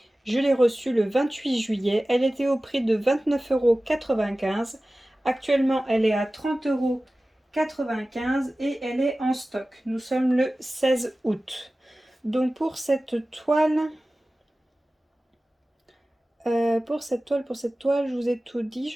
Je l'ai reçue le 28 juillet. Elle était au prix de 29,95 €. Actuellement, elle est à 30,95 € et elle est en stock. Nous sommes le 16 août. Donc pour cette toile, je vous ai tout dit,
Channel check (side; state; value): both; normal; correlation 0.96